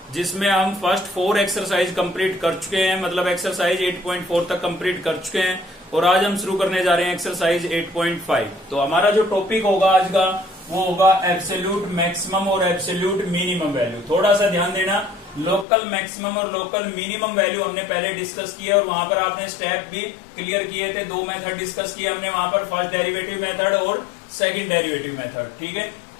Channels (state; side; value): drops out; right; at 15.7 s